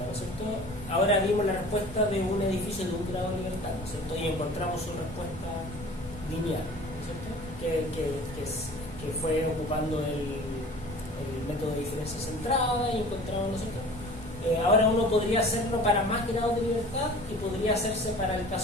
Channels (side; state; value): both; normal; correlation 0.43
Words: es cierto? Ahora vimos la respuesta de un edificio de un grado de libertad, ¿no es cierto? Y encontramos su respuesta lineal, ¿no es cierto? Que fue ocupando el método de diferencia centrada y encontramos, ¿no es cierto? Ahora uno podría hacerlo para más grados de libertad y podría hacerse para el